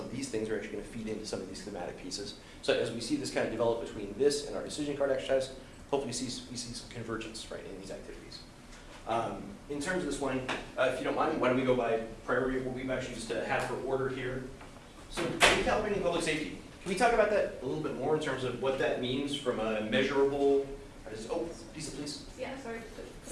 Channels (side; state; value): both; identical; correlation 1.00